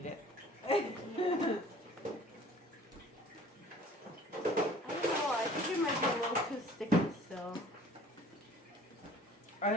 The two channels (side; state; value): both; normal; correlation 0.49